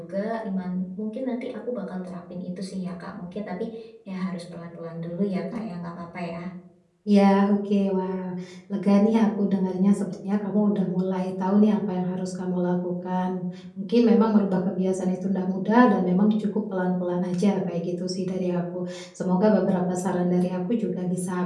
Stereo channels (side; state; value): both; identical; correlation 1.00